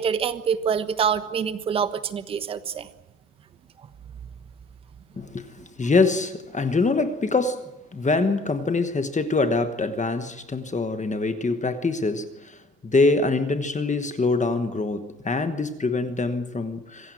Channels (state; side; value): normal; both; correlation 0.54